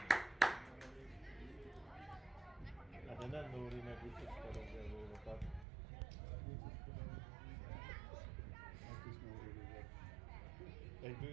Hát de nem Nóri meg biciklarozza a gólokat. Azt is Nóri rúgott. Egy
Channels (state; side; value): drops out; left; at 5.7 s